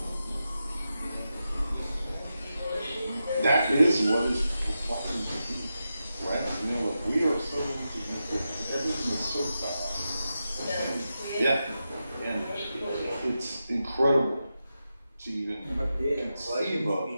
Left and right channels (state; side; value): inverted; both; correlation -0.89